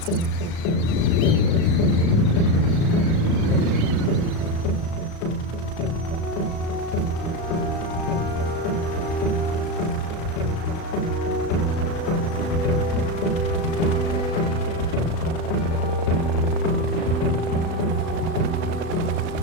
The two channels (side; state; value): right; late; 36 ms